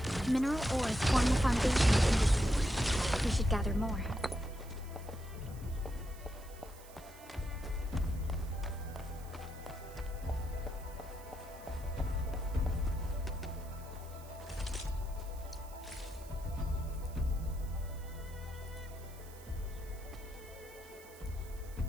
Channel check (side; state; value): right; noise; hiss, 20 dB below the sound